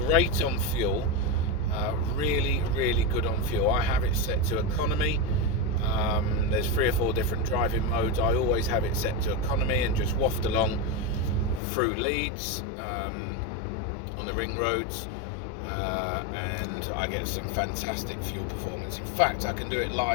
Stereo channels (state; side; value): drops out; right; at 11.6 s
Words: on fuel. Really good on fuel. I have it set to economy. There's 3 or 4 different driving modes. I always have it set to economy and just waft along through Leeds on the ring roads, and I get some fantastic fuel performance. In fact, I can do it